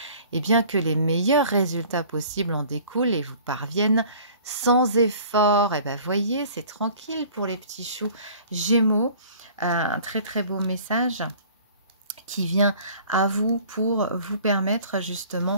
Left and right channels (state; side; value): inverted; both; correlation -0.49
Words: eh bien, que les meilleurs résultats possibles en découlent et vous parviennent sans effort. Et bien, voyez, c'est tranquille pour les petits choux Gémeaux. Un très très beau message qui vient à vous pour vous permettre